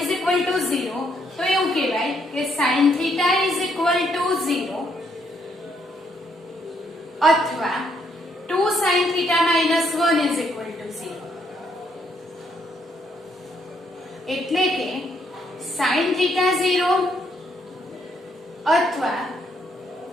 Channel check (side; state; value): both; normal; correlation 0.72